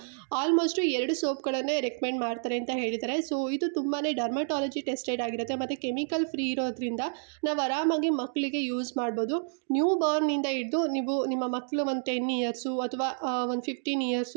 ಆಲ್ಮೋಸ್ಟ್ 2 ಸೋಪ್ಗಳನ್ನೇ ರೆಕಮೆಂಡ್ ಮಾಡ್ತಾರೆ ಅಂತ ಹೇಳಿದ್ದಾರೆ. ಸೊ ಇದು ತುಂಬಾ ಡರ್ಮಟಾಲಜಿ ಟೆಸ್ಟೆಡ್ ಆಗಿರುತ್ತೆ ಮತ್ತು ಕೆಮಿಕಲ್ ಫ್ರೀ ಇರೋದ್ರಿಂದ ನಾವು ಆರಾಮಾಗಿ ಮಕ್ಕಳಿಗೆ ಯೂಸ್ ಮಾಡ್ಬೋದು. ನ್ಯೂ ಬಾರ್ನಿಂದ ಹಿಡಿದು ನೀವು ನಿಮ್ಮ ಮಕ್ಕಳು ಒಂದು 10 ಇಯರ್ಸು ಅಥವಾ ಒಂದು 15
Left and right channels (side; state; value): left; silent; 58 dB below the other